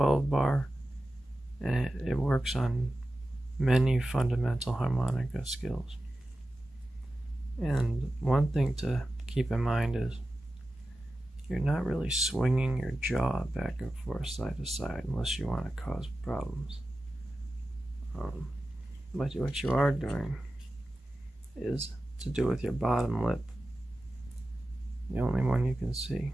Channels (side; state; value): both; normal; correlation 0.94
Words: bar, and it works on many fundamental harmonica skills. And one thing to keep in mind is you're not really swinging your jaw back and forth side to side unless you want to cause problems. But what you are doing is to do with your bottom lip, the only one you can see,